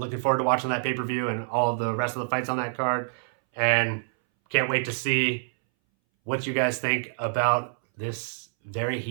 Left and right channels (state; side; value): silent; left; 60 dB below the other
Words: forward to watching that pay-per-view and all of the rest of the fights on that card. And can't wait to see what you guys think about this very